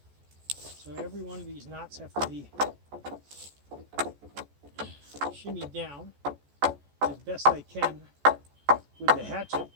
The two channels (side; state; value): left; late; 14 ms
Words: So every one of these knots have to be shimmied down as best I can with the hatchet